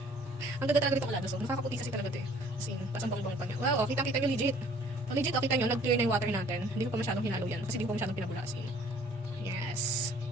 Ang ganda talaga ditong Alada soap. Nakakaputi kasi talaga ito eh. As in, pasang bang-bang pa niya. Wow, kita nyo legit. Legit, kita nyo, nag-clear na yung water natin. Hindi ko pa masyadong hinalo yan. Kasi hindi ko pa masyadong pinabulasin. Yes.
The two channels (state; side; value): normal; both; correlation 0.55